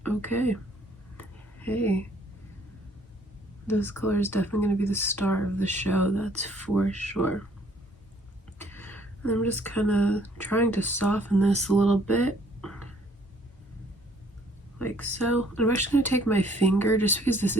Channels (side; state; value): both; normal; correlation 0.62